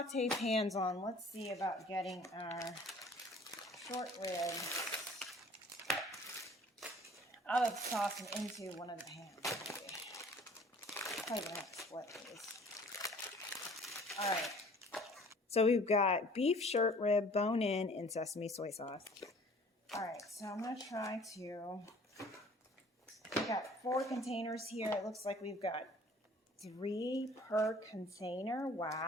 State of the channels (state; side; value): normal; both; correlation 0.51